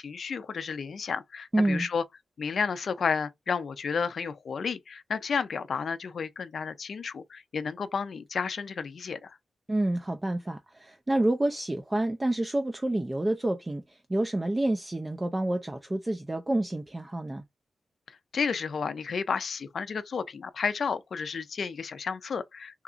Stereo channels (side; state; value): both; normal; correlation 0.91